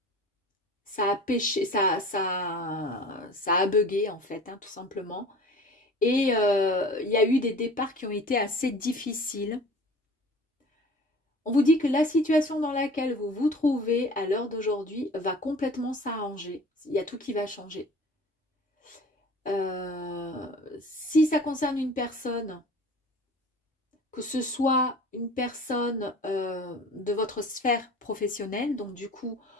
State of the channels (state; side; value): normal; both; correlation 0.43